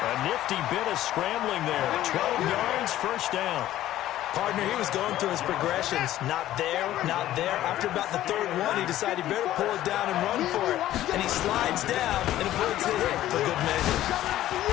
nifty bit of scrambling there. 12 yards, first down. Partner, he was going through his progressions. Not there, not there. After about the 3rd one, he decided he better pull it down and run for it. And he slides down and avoids the hit for good measure.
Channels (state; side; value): quieter; right; 13.7 dB